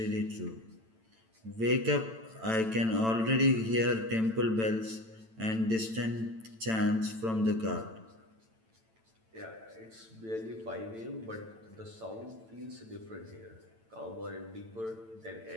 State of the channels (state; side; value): late; left; 9.0 ms